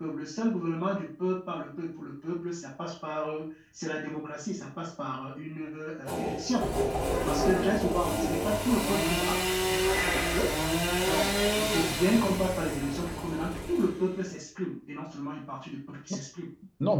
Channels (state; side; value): identical; both; correlation 1.00